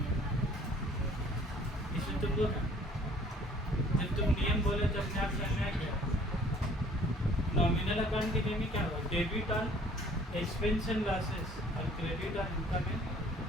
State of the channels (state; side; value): normal; both; correlation 0.55